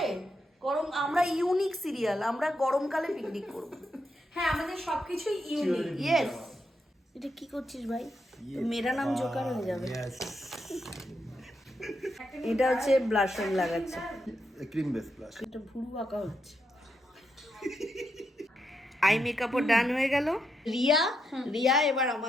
গরম, আমরা ইউনিক সিরিয়াল, আমরা গরমকালে পিকনিক করব। হ্যাঁ, আমাদের সবকিছুই ইউনিক। ইয়েস। এটা কি করছিস ভাই? তো মেরা নাম জোকার হয়ে যাবে। এটা হচ্ছে ব্লাশন লাগাচ্ছে, ক্রিম বেস প্লাস। এটা ভুরু আঁকা হচ্ছে। আই মেকআপও ডান হয়ে গেল। রিয়া এবার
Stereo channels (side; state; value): both; normal; correlation 0.82